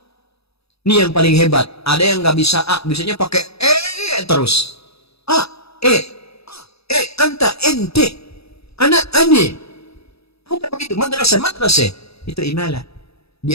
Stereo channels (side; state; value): right; late; 0.78 ms